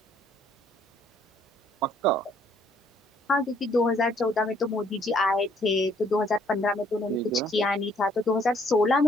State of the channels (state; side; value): normal; both; correlation 0.64